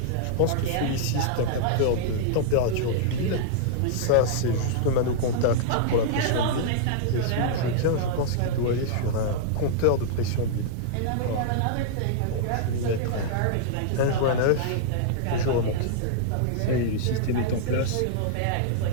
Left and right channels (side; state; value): both; different; correlation -0.02